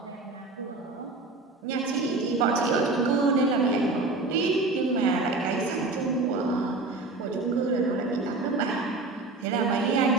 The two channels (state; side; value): quieter; left; 3.3 dB